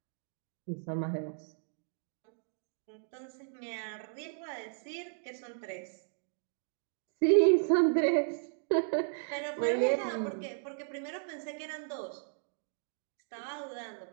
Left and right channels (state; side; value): silent; left; digital silence